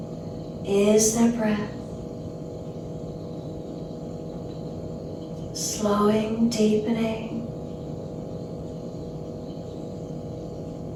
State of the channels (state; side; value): identical; both; correlation 1.00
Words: Is there breath? Slowing, deepening.